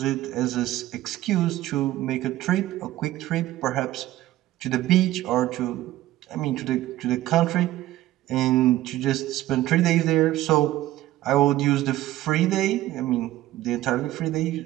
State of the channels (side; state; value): left; quieter; 15.2 dB